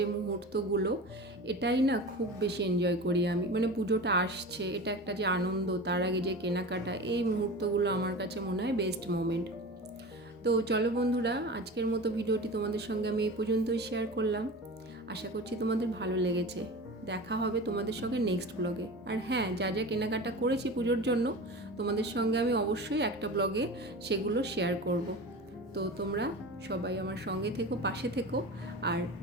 মুহূর্তগুলো, এটাই না খুব বেশি এনজয় করি আমি। মানে পুজোটা আসছে, এটা একটা যে আনন্দ, তার আগে যে কেনাকাটা, এই মুহূর্তগুলো আমার কাছে মনে হয় বেস্ট মোমেন্ট। তো চলো বন্ধুরা, আজকের মতো ভিডিওটি তোমাদের সঙ্গে আমি এই পর্যন্তই শেয়ার করলাম। আশা করছি তোমাদের ভালো লেগেছে। দেখা হবে তোমাদের সঙ্গে নেক্সট ব্লগে। আর হ্যাঁ, যা যা কেনাকাটা করেছি পুজোর জন্য তোমাদের সঙ্গে আমি অবশ্যই একটা ব্লগে সেগুলো শেয়ার করব। তো তোমরা সবাই আমার সঙ্গে থেকো, পাশে থেকো, আর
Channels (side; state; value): both; normal; correlation 0.32